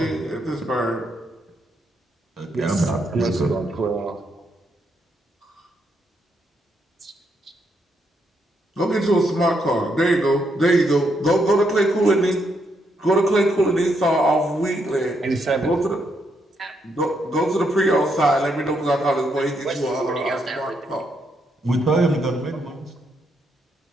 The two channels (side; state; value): both; normal; correlation 0.77